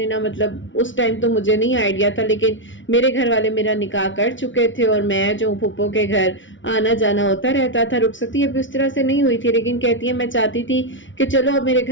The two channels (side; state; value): right; late; 0.56 ms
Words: نا مطلب اس ٹائم تو مجھے نہیں آئیڈیا تھا، لیکن میرے گھر والے میرا نکاح کر چکے تھے اور میں جو پھپھو کے گھر آنا جانا ہوتا رہتا تھا. رخصتی ابھی اس طرح سے نہیں ہوئی تھی، لیکن کہتی ہے میں چاہتی تھی کہ چلو اب میرے